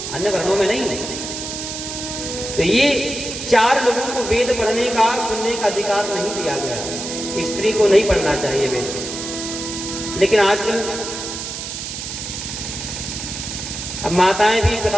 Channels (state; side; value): noise; right; hiss, 6 dB below the sound